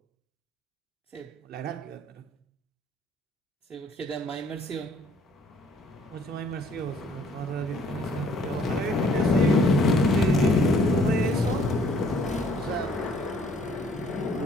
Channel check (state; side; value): normal; both; correlation 0.60